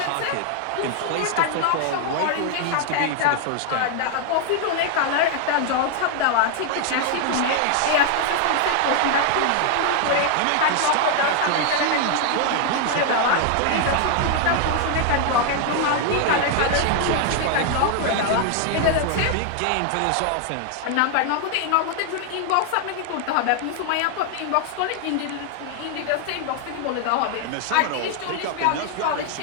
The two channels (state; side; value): different; both; correlation 0.00